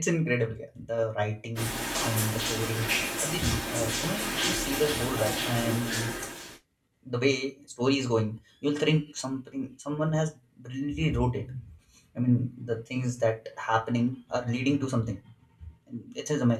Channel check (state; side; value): identical; both; correlation 1.00